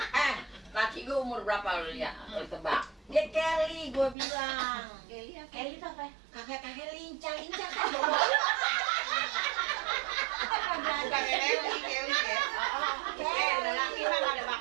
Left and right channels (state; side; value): drops out; left; at 4.2 s